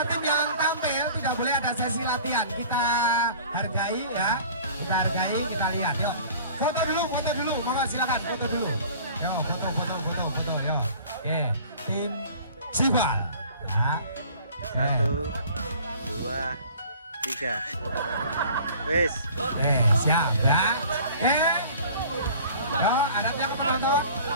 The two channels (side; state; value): both; inverted; correlation -0.47